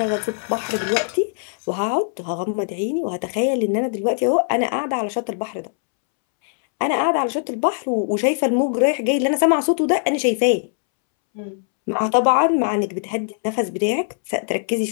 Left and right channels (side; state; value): right; silent; 65 dB below the other